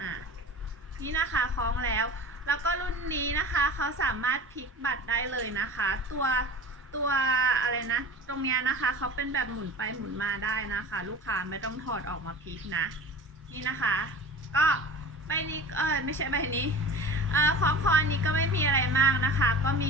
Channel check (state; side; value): normal; both; correlation 0.37